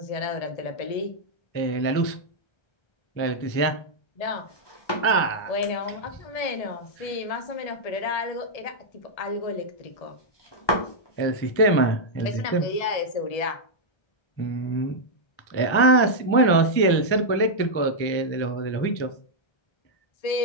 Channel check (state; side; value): late; right; 1.3 ms